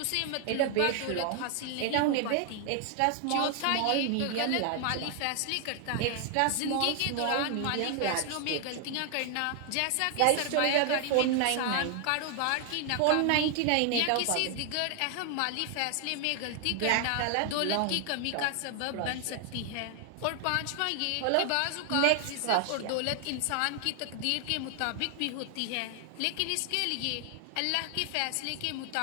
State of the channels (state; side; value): different; both; correlation 0.00